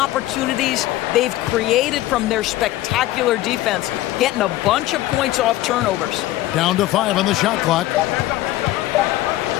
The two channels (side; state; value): right; quieter; 15.8 dB